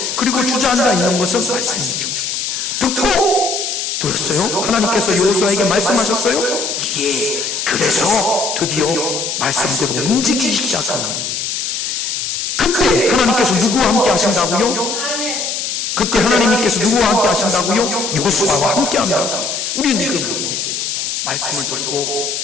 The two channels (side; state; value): left; noise; hiss, 3 dB below the sound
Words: 그리고 주저앉아 있는 것은 말씀이 죽은 거예요. 듣고 들었어요? 하나님께서 여호수아에게 말씀하셨어요? 예. 그래서 드디어 말씀대로 움직이기 시작합니다. 그때 하나님께서 누구와 함께 하신다고요? 그때 하나님께서 누구와 함께 하신다고요? 여호수아와 함께 한다고요. 우리는 이걸 못해요. 말씀을 듣고